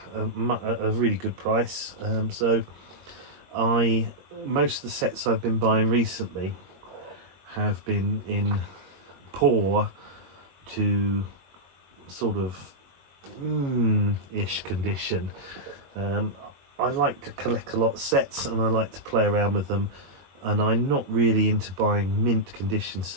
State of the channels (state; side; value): late; left; 22 ms